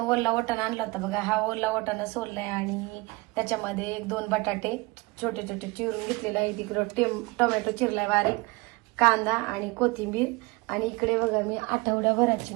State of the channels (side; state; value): left; quieter; 24.6 dB